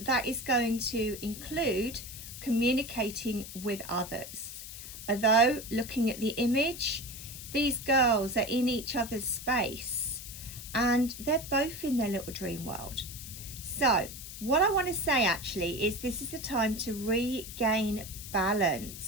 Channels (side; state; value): left; noise; hiss, 11 dB below the sound